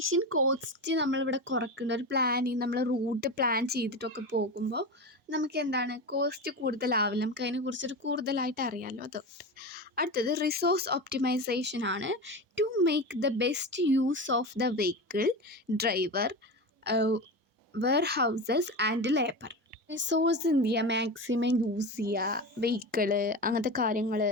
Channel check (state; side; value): normal; both; correlation 0.24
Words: cost നമ്മളിവിടെ കുറയ്ക്കേണ്ട ഒരു പ്ലാനിങ്. നമ്മൾ റൂട്ട് പ്ലാൻ ചെയ്തിട്ടൊക്കെ പോകുമ്പോൾ നമുക്ക് കോസ്റ്റ് കൂടുതലാവില്ല. നമുക്ക് അതിനെക്കുറിച്ചൊരു കൂടുതലായിട്ട് അറിയാമല്ലോ. അതുകൊണ്ട് അടുത്തത് റിസോഴ്സ് ഒപ്റ്റിമൈസേഷൻ ആണ്. To make the best use of the vehicle, driver, warehouses and labour. Resource എന്ത് ചെയ്യുക? മാക്സിമം യൂസ് ചെയ്യുക. വെഹിക്കിള്, അങ്ങനത്തെ കാര്യങ്ങൾ,